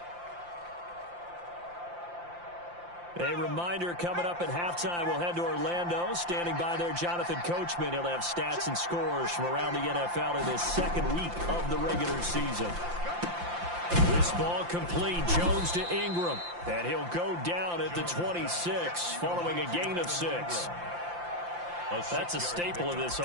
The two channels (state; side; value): late; left; 5.8 ms